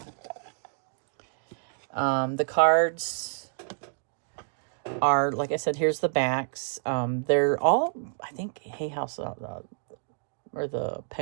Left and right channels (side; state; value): left; silent; digital silence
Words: The cards are, like I said, here's the backs. They're all, I think, Hay House or the